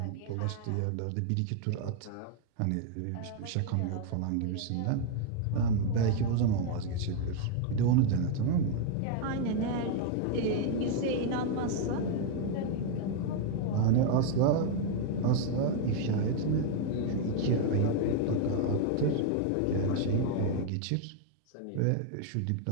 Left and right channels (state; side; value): different; both; correlation 0.00